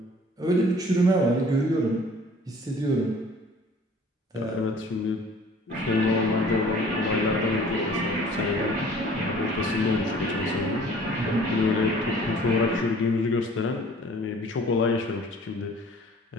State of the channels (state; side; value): normal; both; correlation 0.51